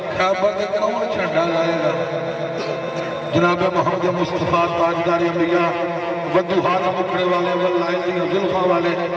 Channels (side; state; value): both; identical; correlation 1.00